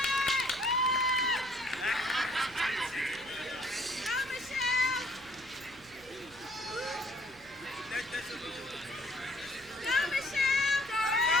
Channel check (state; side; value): noise; right; hum, 24 dB below the sound